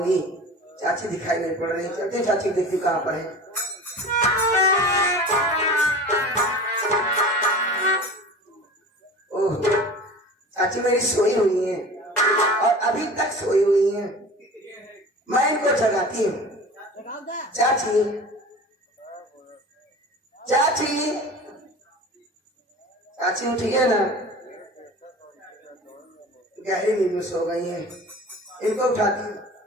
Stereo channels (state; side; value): normal; both; correlation 0.37